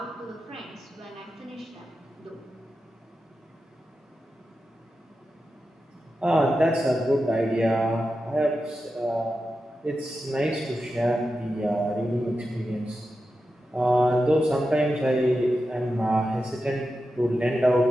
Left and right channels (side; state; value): both; normal; correlation 0.91